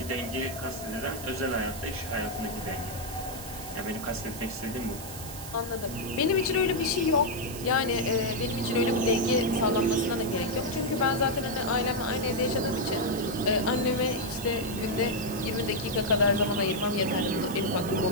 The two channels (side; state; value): right; noise; hiss, 12 dB below the sound